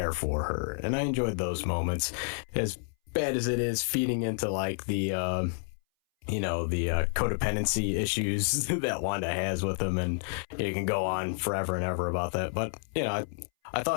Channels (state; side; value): silent; right; 58 dB below the other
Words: for her. And I enjoyed those moments. As bad as it is feeding into like the, the codependency issues that Wanda has with him, and you can go on forever and ever about that. But, I